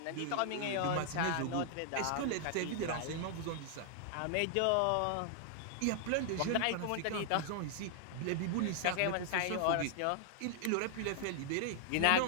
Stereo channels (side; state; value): both; different; correlation 0.00